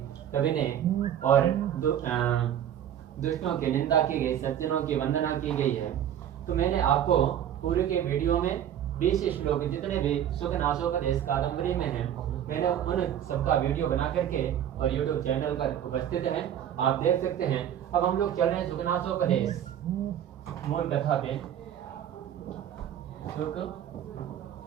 कवि ने और दुष्टों की निंदा की गई, सज्जनों की वंदना की गई है। तो मैंने आपको पूरे के वीडियो में 20 श्लोक जितने भी सुख नासोपदेश कादम्बरी में हैं, मैंने उन सबका वीडियो बना करके और यूट्यूब चैनल पर उपस्थित है, आप देख सकते हैं। अब हम लोग चल रहे हैं सुख नासोपदेश मूल कथा पे। सुख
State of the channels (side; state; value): left; quieter; 10.3 dB